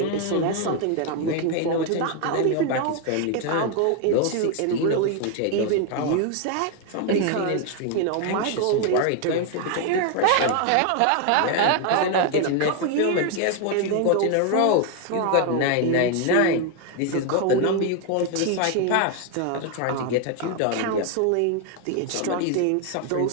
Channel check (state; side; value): different; both; correlation 0.00